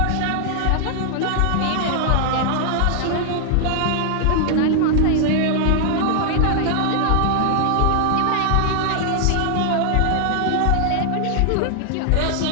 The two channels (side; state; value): both; different; correlation 0.00